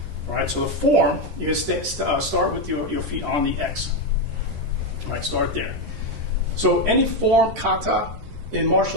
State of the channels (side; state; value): left; late; 13 ms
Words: All right, so the form, you can start with your feet on the X. All right, start there. So any form, kata, in